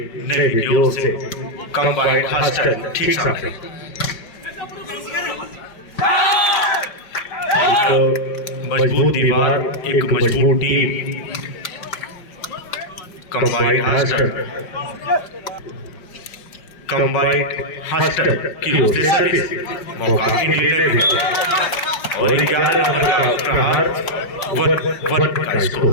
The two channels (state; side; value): late; right; 5.4 ms